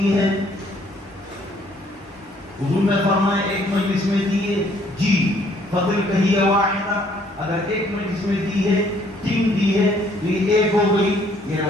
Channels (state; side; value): normal; both; correlation 0.63